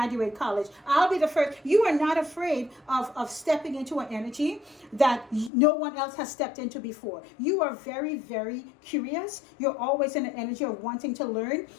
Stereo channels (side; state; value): right; drops out; at 5.5 s